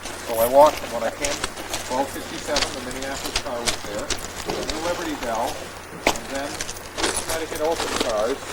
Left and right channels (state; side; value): identical; both; correlation 1.00